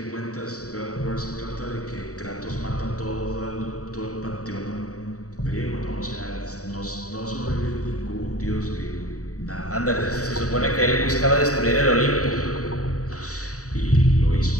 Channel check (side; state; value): right; late; 0.66 ms